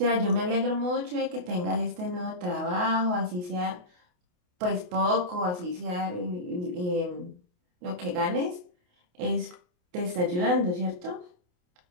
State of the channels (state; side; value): late; left; 28 ms